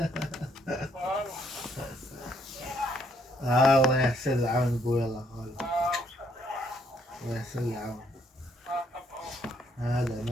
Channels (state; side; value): normal; both; correlation 0.70